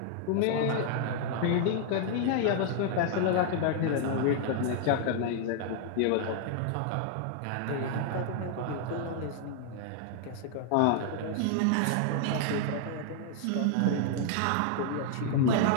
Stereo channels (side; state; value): both; different; correlation 0.00